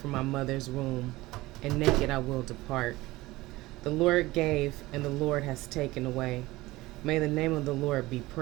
my mother's womb, and naked I will depart. The Lord gave, and the Lord has taken away. May the name of the Lord be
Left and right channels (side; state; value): left; quieter; 19.2 dB